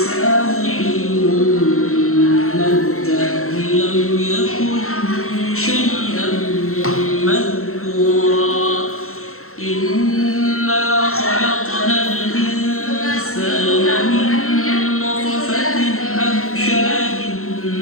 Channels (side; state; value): right; late; 0.63 ms